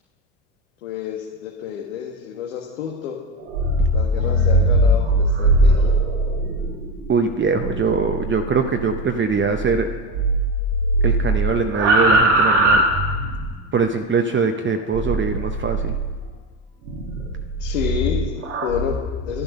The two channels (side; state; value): both; normal; correlation 0.20